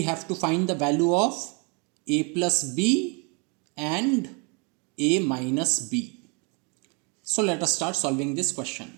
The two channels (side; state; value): left; quieter; 33.3 dB